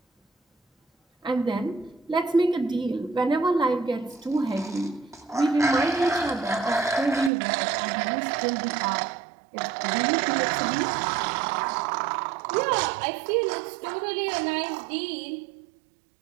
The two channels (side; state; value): left; drops out; at 7.3 s